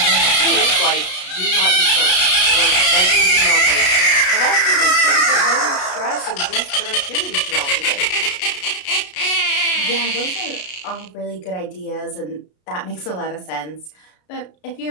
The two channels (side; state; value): right; late; 33 ms